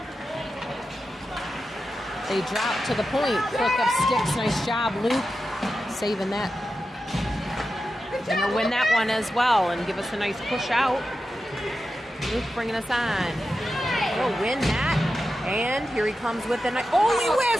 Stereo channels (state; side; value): normal; both; correlation 0.91